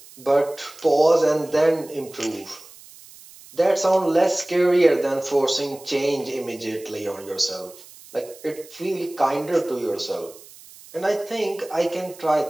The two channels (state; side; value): noise; right; hiss, 21 dB below the sound